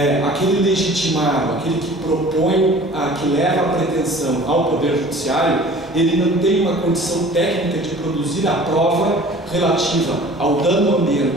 aquele legitimado, aquele que propõe, que leva a pretensão ao Poder Judiciário, ele não tem uma condição técnica de produzir a prova relativa ao dano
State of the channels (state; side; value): normal; both; correlation 0.46